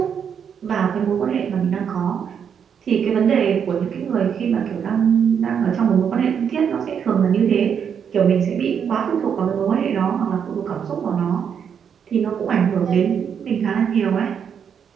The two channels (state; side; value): quieter; left; 7.6 dB